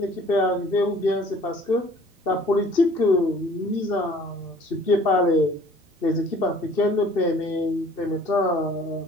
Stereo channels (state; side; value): normal; both; correlation 0.52